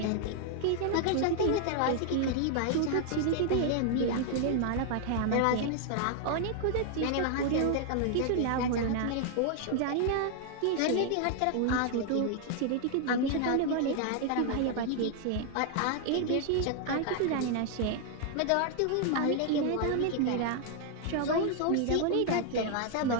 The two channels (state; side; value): different; both; correlation 0.00